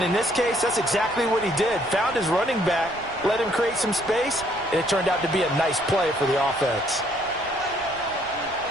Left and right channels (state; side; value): noise; right; rumble, 22 dB below the sound